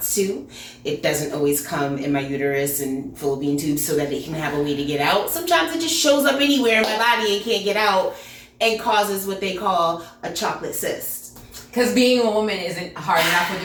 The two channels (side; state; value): both; identical; correlation 1.00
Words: to. It doesn't always come in my uterus and fallopian tubes so that it can have a way to get out. Sometimes it just shows up anywhere in my body and can't get out and causes what they call a chocolate cyst. Because being a woman isn't hard enough with